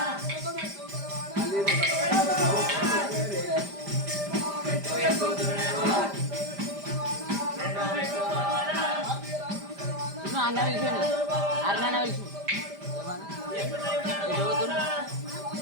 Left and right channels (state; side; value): late; left; 5.0 ms